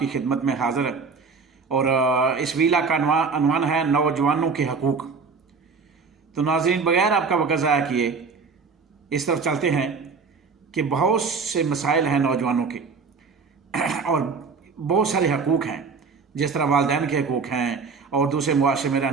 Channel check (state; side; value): quieter; left; 5.0 dB